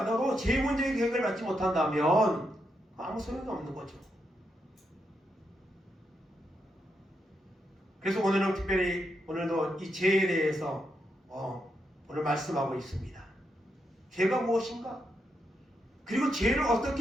죄 문제 해결받지 못한다면 아무 소용이 없는 거죠. 그래서 오늘은 특별히 오늘도 이 죄에 대해서 오늘 말씀하고 있습니다. 죄가 무엇인가? 그리고 죄를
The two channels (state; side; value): normal; both; correlation 0.82